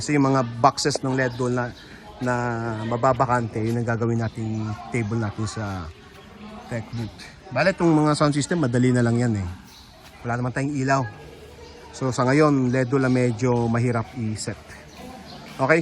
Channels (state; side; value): identical; both; correlation 1.00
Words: yung mga boxes ng LED wall na mababakante, yun ang gagawin natin table natin sa tech booth. Bale, itong mga sound system, madali na lang yan Wala naman tayong ilaw. So sa ngayon, LED wall medyo mahirap i-set.